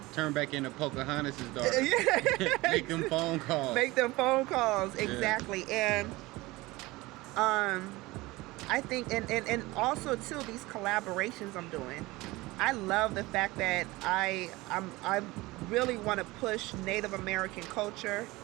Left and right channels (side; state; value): left; quieter; 20.7 dB